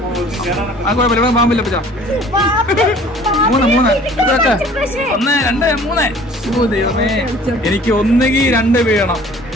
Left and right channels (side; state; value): both; normal; correlation 0.51